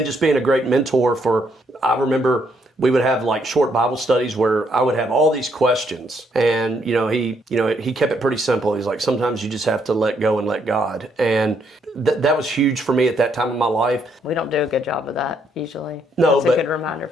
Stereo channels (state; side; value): normal; both; correlation 0.73